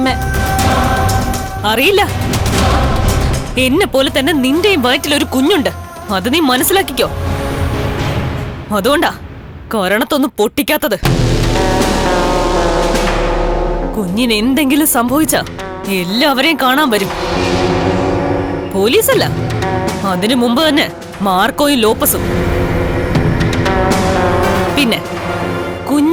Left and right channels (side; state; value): both; identical; correlation 1.00